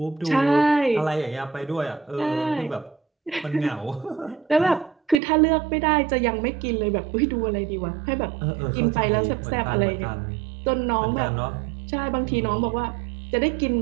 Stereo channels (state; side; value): drops out; left; at 5.2 s